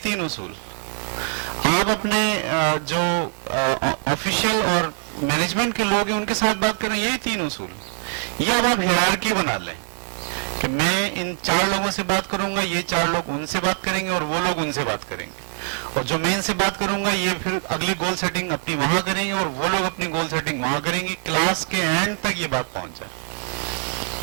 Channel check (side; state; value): left; silent; 58 dB below the other